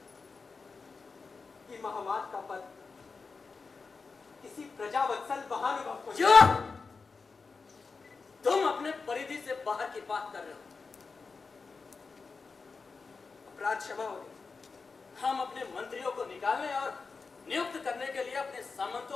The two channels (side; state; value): right; quieter; 4.6 dB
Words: कि महामात का पद किसी प्रजावत्सल महानुभव को। क्या? तुम अपने परिधि से बाहर की बात कर रहे हो। अपराध क्षमा हो गई। हम अपने मंत्रियों को निकालने और नियुक्त करने के लिए अपने